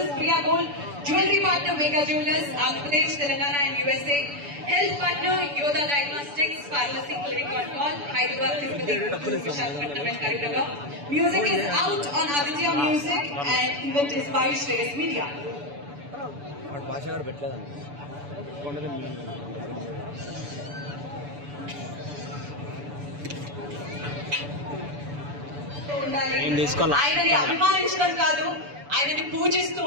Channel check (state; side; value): late; left; 6.9 ms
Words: Priya Gold, Jewelry Partner Mega Jewelers, Andhra Pradesh, Telangana and USA. Health Partner Yoda Diagnostics, Pharmacy Clinic on Call, Hyderabad, Tirupati, Visakhapatnam and Karimnagar. Music is out on Aditya Music and event is by Shreyas Media. ఆయనని అభిమానించడం కాదు, ఆయనని పూజిస్తూ